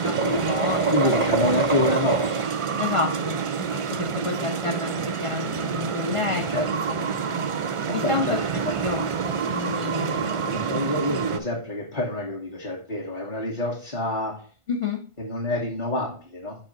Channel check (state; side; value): late; left; 1.5 ms